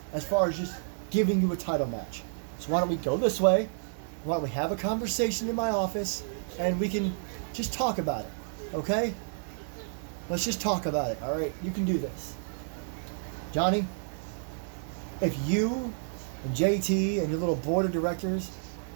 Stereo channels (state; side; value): silent; left; 58 dB below the other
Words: as far as just giving you a title match. So why don't we go this way? Why don't we have a conversation in my office and we can just talk about it, okay? Let's just talk about it, all right? You can do this. Johnny, if you and JT and your little board of directors